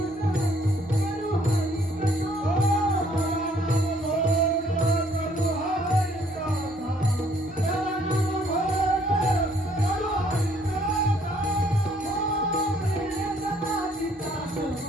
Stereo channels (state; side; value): normal; both; correlation 0.64